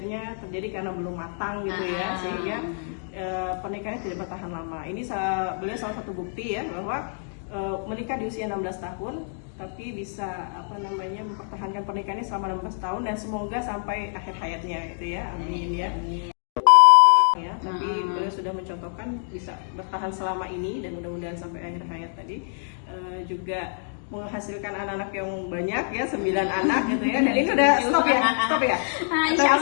terjadi karena belum matang gitu ya, sehingga pernikahannya tidak bertahan lama. Ini beliau salah satu bukti ya bahwa menikah di usia 16 tahun tapi bisa mempertahankan pernikahannya selama 16 tahun dan semoga sampai akhir hayatnya gitu ya. Amin ya. Tapi beliau sudah mencontohkan bisa bertahan selama ini dan mudah-mudahan sampai akhir hayat tadi. Juga menghasilkan anak-anak yang banyak ya, 9 anak gitu ya. Dan ini udah stop ya? Insya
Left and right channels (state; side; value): silent; right; digital silence